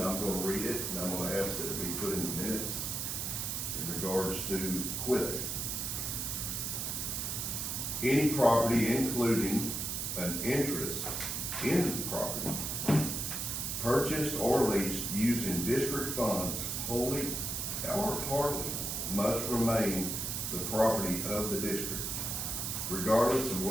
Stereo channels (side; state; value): right; noise; hiss, 2 dB below the sound